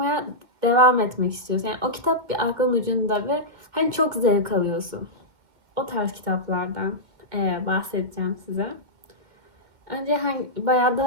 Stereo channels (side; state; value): left; late; 2.1 ms